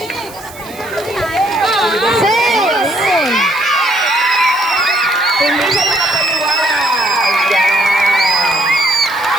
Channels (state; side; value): noise; right; hiss, 19 dB below the sound